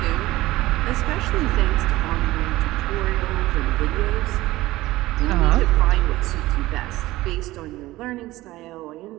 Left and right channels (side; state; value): left; quieter; 17.6 dB